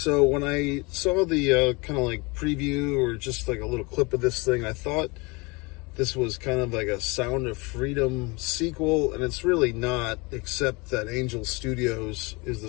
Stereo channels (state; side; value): quieter; right; 27.0 dB